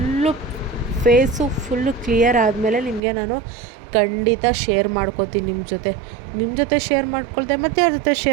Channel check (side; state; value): left; drops out; at 3.0 s